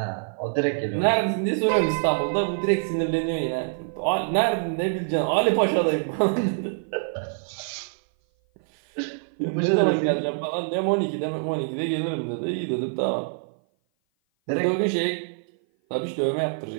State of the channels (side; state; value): left; silent; 56 dB below the other